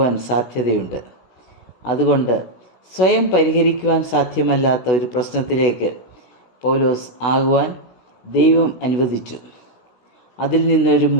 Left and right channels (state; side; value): late; right; 16 ms